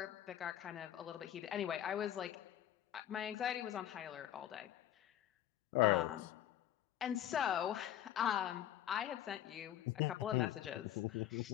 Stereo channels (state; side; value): quieter; right; 11.7 dB